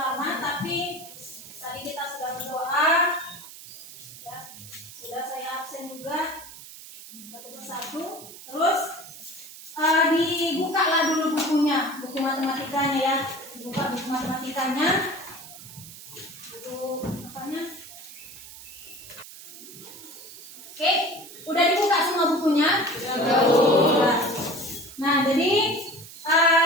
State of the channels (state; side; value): noise; right; hiss, 16 dB below the sound